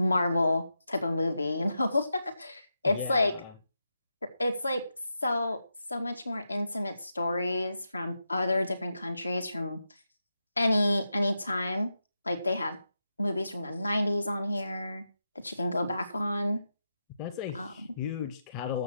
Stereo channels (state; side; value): inverted; both; correlation -0.87